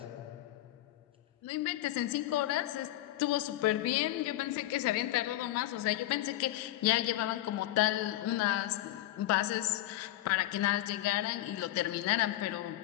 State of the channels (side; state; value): right; quieter; 15.2 dB